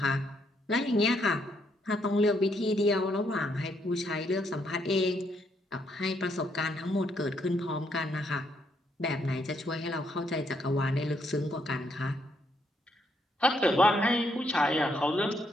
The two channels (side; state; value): both; normal; correlation 0.74